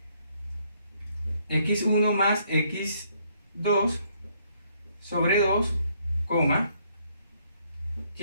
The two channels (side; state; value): both; inverted; correlation -0.69